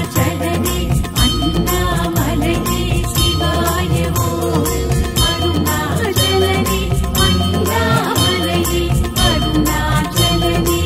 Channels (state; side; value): identical; both; correlation 1.00